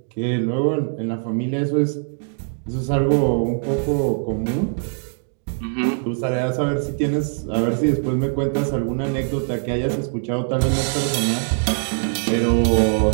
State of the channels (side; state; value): left; silent; digital silence